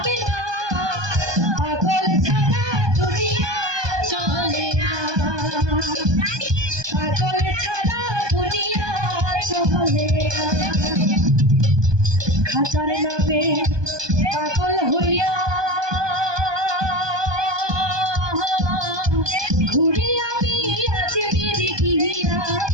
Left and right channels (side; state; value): left; late; 1.2 ms